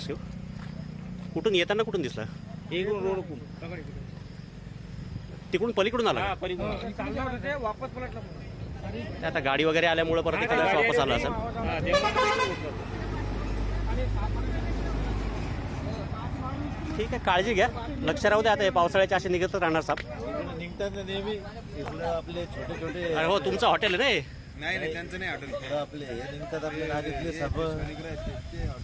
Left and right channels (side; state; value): both; identical; correlation 1.00